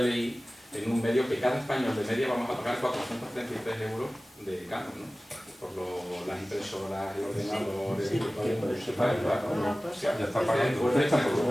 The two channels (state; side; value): normal; both; correlation 0.97